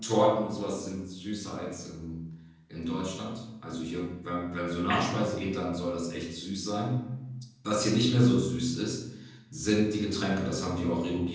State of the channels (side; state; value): both; identical; correlation 1.00